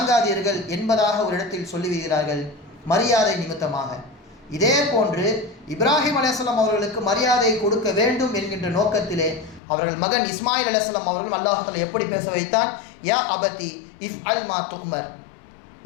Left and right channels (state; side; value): drops out; right; at 9.6 s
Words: என்பதாக ஒரு இடத்தில் சொல்லிவிடுகிறார்கள், மரியாதை நிமித்தமாக. இதே போன்று இப்ராஹிம் அலைஹிஸ்ஸலாம் அவர்களுக்கு மரியாதை கொடுக்க வேண்டும் என்கின்ற நோக்கத்திலே அவர்கள் மகன் இஸ்மாயில் அலைஹிஸ்ஸலாம் அவர்கள் அல்லாஹ் தஆலா எப்படி பேச வைத்தான்? யா அபதி இஃப்அல் மா துக்மர்,